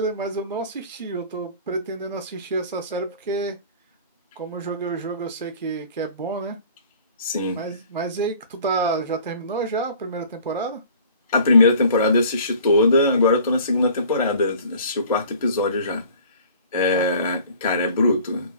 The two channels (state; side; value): inverted; both; correlation -0.48